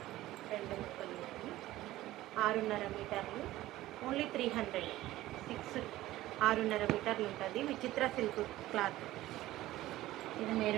2 ముక్కలు 6.5 మీటర్లు. ఓన్లీ 300. 6.5 మీటర్లు ఉంటుంది. విచిత్ర సిల్క్ క్లాత్. ఇది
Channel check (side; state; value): left; quieter; 15.9 dB